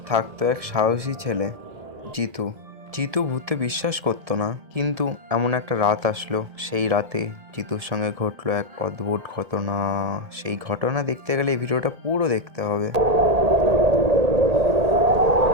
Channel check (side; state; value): left; late; 1.7 ms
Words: থাকতো এক সাহসী ছেলে, জিতু। জিতু ভূতে বিশ্বাস করতো না, কিন্তু এমন একটা রাত আসলো, সেই রাতে জিতুর সঙ্গে ঘটলো এক অদ্ভুত ঘটনা। সেই ঘটনা দেখতে গেলে এই ভিডিওটা পুরো দেখতে হবে।